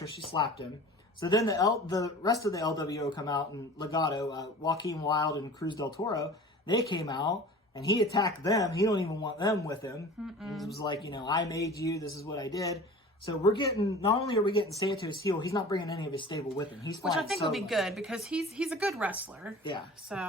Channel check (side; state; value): both; normal; correlation 0.41